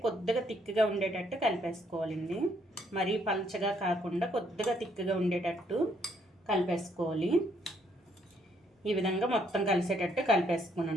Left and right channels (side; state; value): both; normal; correlation 0.70